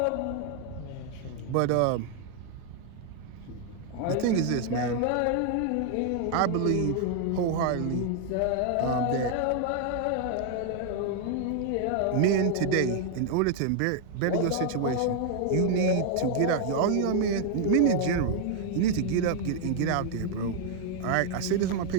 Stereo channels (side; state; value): both; different; correlation 0.00